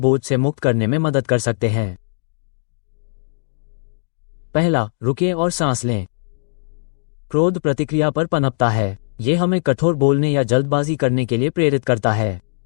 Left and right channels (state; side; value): silent; right; digital silence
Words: से मुक्त करने में मदद कर सकते हैं। पहला, रुकें और सांस लें। क्रोध प्रतिक्रिया पर पनपता है। ये हमें कठोर बोलने या जल्दबाजी करने के लिए प्रेरित करता है।